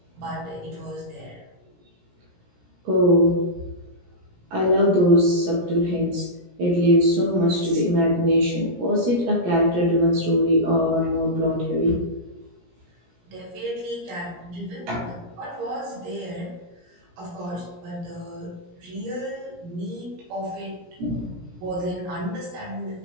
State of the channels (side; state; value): left; late; 17 ms